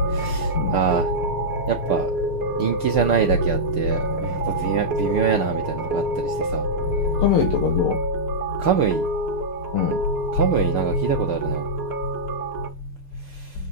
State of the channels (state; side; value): late; right; 6.7 ms